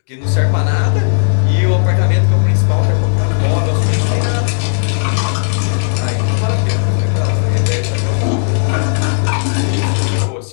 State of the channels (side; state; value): right; silent; digital silence